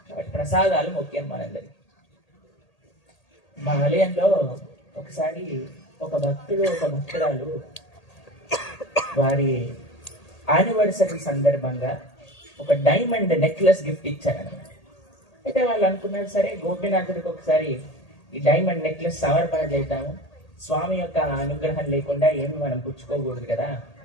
కాబట్టి ప్రసాదాలు ముఖ్యం మనందరికి. మా ఆలయంలో ఒకసారి ఒక భక్తుడు ఒక భక్తురాలు వారి యానివర్సరీ సందర్భంగా ఒక డైమండ్ నెక్లెస్ గిఫ్ట్ ఇచ్చారనమాట. అయితే వాళ్ళు అనుకున్నారు సరే గోపీనాథుడికి ఒకసారి ఈ డైమండ్ నెక్లెస్ సమర్పణ చేద్దాము, స్వామి యొక్క అనుగ్రహం లేకుండా ఏమి మనం పుచ్చుకోకూడదు కదా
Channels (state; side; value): late; right; 1.8 ms